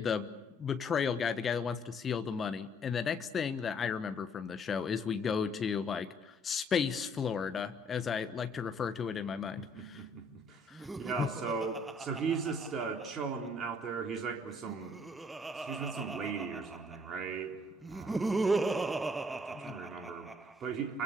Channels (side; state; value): both; normal; correlation 0.64